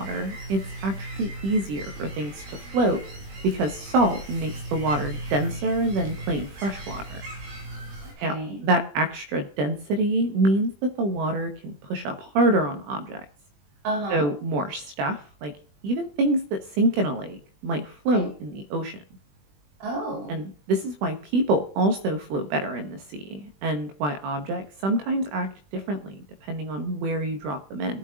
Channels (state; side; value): late; left; 20 ms